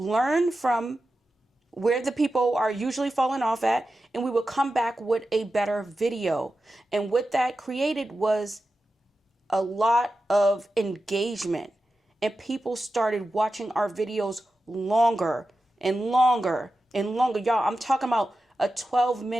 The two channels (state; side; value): normal; both; correlation 0.92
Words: from where the people are usually falling off at, and we would come back with a better video. And what that created was a lot of engagement, and people started watching our videos longer and longer and longer. Y'all, I'm talking about a